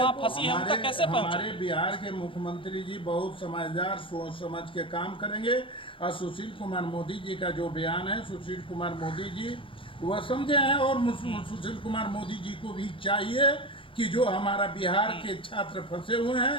फंसी है उन तक कैसे पहुंचे? हमारे बिहार के मुख्यमंत्री जी बहुत समझदार, सोच समझ के काम करेंगे। और सुशील कुमार मोदी जी का जो बयान है, सुशील कुमार मोदी जी वह समझे हैं। और सुशील कुमार मोदी जी को भी चाहिए कि जो हमारा बिहार के छात्र फंसे हुए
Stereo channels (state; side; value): late; right; 0.25 ms